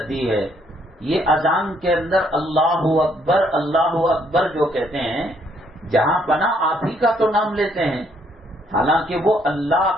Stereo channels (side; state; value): both; normal; correlation 0.69